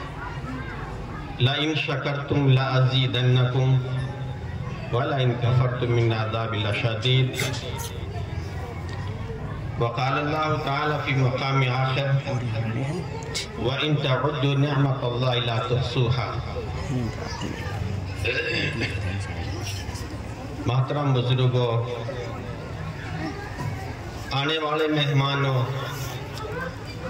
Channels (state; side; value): identical; both; correlation 1.00